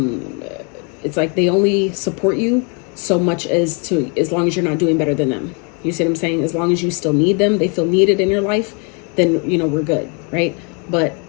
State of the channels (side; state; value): right; quieter; 35.8 dB